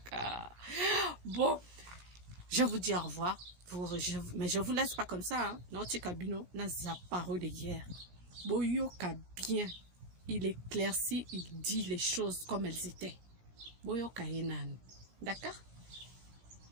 Bon, je vous dis au revoir. Mais je vous laisse pas comme ça. Hein. Notre cabino n'a pas parole de guerre. Boyoka bien. Il éclaircit, il dit les choses comme elles étaient. Boyoka Enan. D'accord?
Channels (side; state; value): left; late; 17 ms